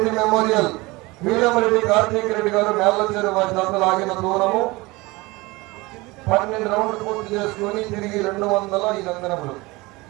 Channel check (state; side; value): quieter; left; 22.7 dB